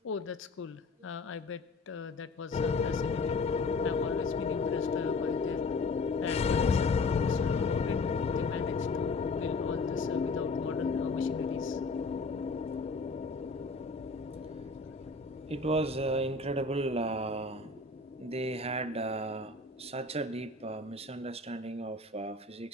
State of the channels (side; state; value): right; quieter; 3.5 dB